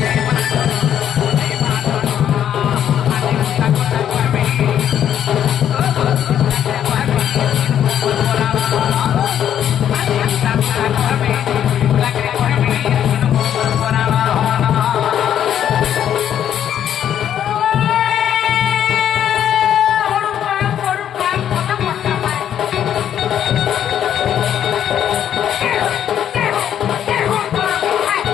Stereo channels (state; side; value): quieter; right; 10.0 dB